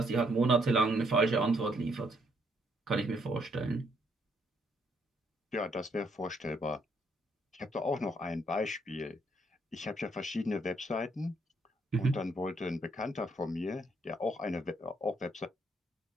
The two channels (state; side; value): normal; both; correlation 0.72